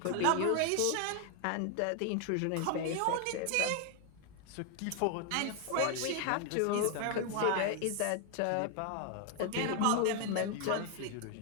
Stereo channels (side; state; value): both; different; correlation 0.00